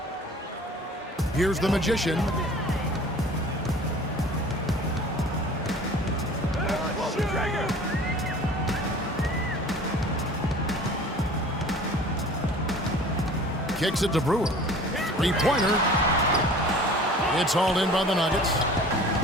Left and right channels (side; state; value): both; normal; correlation 0.45